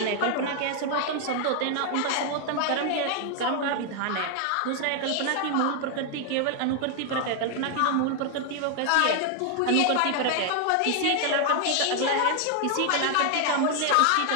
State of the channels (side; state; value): both; different; correlation 0.00